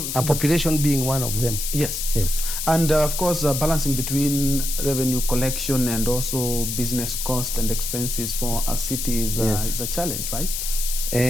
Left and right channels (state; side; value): noise; left; hiss, 3 dB below the sound